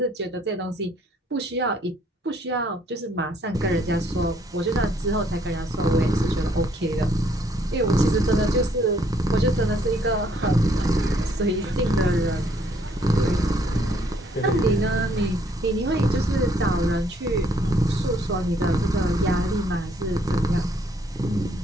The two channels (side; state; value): both; normal; correlation 0.66